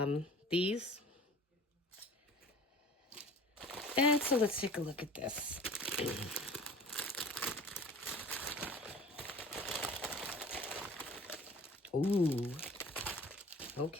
these. And so let's take a look at this. Ooh.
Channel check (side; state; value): both; normal; correlation 0.44